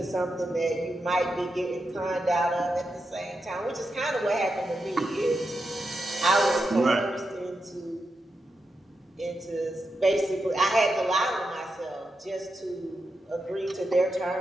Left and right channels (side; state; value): both; normal; correlation 0.87